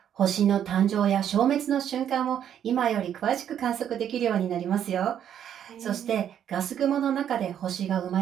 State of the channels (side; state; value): left; quieter; 9.6 dB